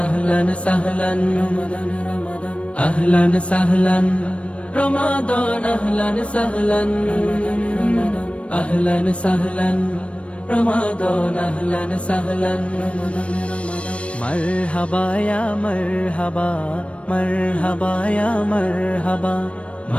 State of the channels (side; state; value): right; late; 0.062 ms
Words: আহলান সাহলান রমাদান রমাদান আহলান সাহলান রমাদান আহলান সাহলান আহলান সাহলান রমাদান আহলান সাহলান মারহাবা ইয়া মারহাবা মারহাবা ইয়া মারহাবা